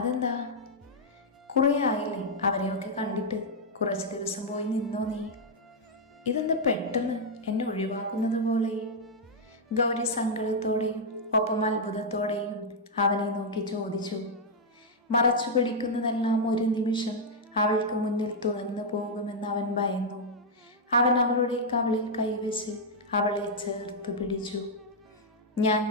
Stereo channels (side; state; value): both; normal; correlation -0.03